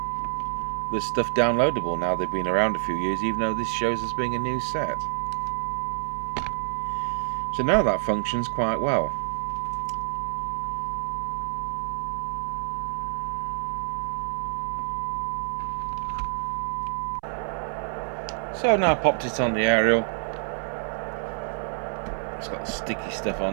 there's stuff downloadable now. They've been around a few years, even though this shows as being a new set. So now that functions quite well. So I've now popped it on the aerial. It's got sticky stuff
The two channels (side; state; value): left; silent; 59 dB below the other